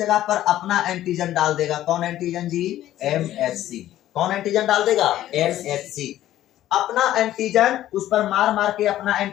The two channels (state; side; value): quieter; right; 13.3 dB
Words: पर अपना एंटीजन डाल देगा। कौन एंटीजन जी? MHC। कौन एंटीजन डाल देगा? MHC। अपना एंटीजन उस पर मार के अपना